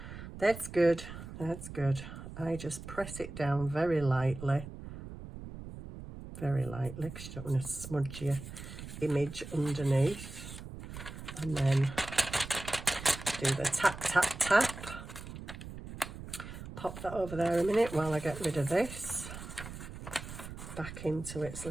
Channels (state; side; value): noise; right; rumble, 11 dB below the sound